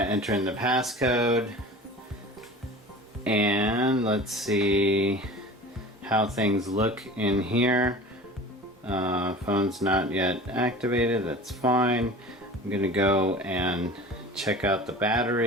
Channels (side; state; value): both; normal; correlation 0.38